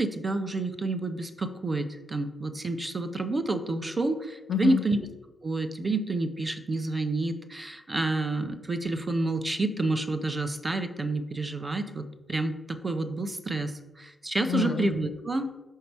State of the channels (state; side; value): normal; both; correlation 0.83